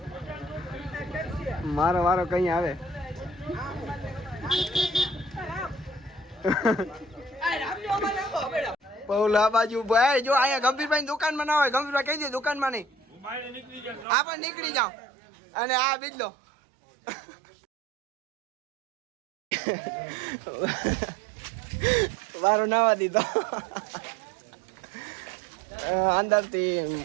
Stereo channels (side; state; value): left; drops out; at 14.1 s